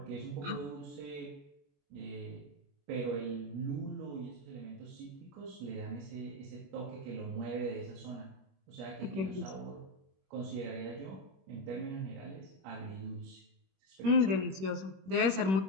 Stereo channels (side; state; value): left; late; 21 ms